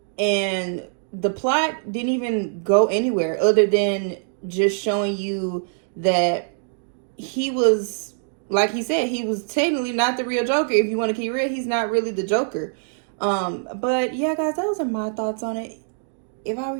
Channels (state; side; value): silent; left; digital silence